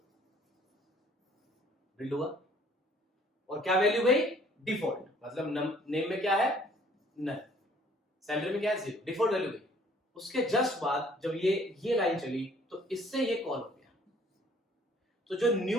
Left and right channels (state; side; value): normal; both; correlation 0.58